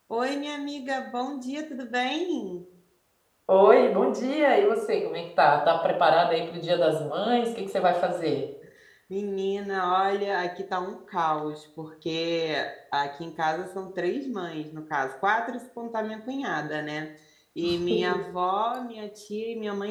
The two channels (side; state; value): both; identical; correlation 1.00